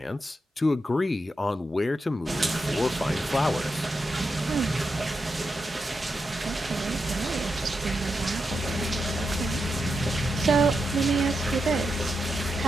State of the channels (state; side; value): normal; both; correlation 0.86